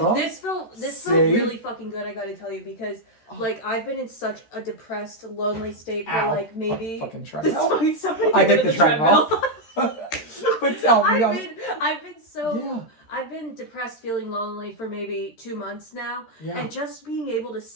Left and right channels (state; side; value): late; right; 13 ms